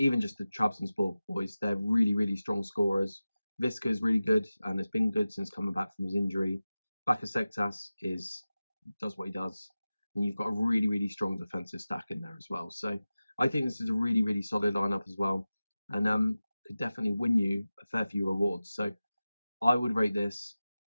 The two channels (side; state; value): both; inverted; correlation -0.95